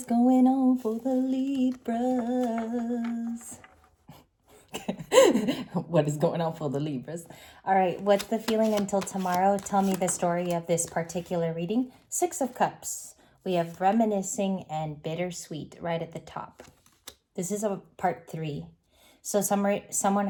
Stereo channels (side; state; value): both; identical; correlation 1.00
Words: going on for the Libras? What is going on for the Libras? All right, what's the feeling until tomorrow? Tell me the story of this particular reading. Six of Cups. We have reminiscing and bittersweet right at the top. This is a part 3. So somebody has